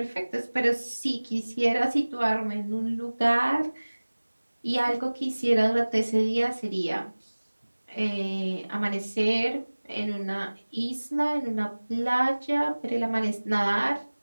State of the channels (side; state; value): both; inverted; correlation -1.00